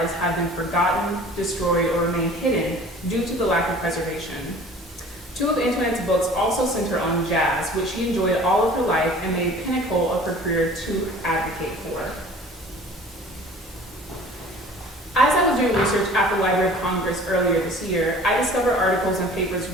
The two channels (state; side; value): normal; both; correlation 0.46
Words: have been forgotten, destroyed, or remain hidden due to the lack of preservation. 2 of Antoinette's books also center on jazz, which she enjoyed all of her life and made pinnacle of her career to advocate for. As I was doing research at the Library of Congress earlier this year, I discovered articles and papers